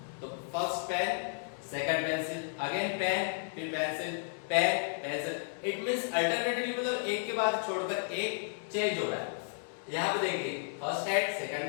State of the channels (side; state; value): right; silent; digital silence